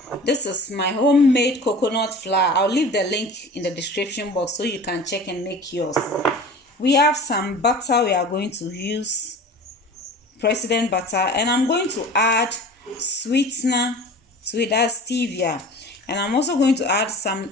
This is my homemade coconut flour. I'll leave the link in the description box so you can check and make yours. We have some butter. We are going to use President butter, and I'm going to add sweetener to it, as stevia, and I'm also going to add some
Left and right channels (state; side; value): normal; both; correlation 0.39